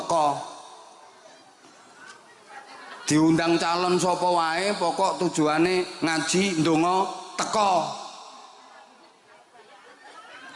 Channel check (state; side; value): identical; both; correlation 1.00